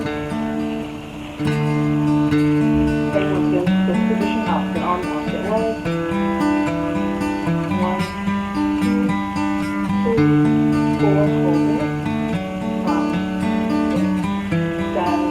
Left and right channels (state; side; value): identical; both; correlation 1.00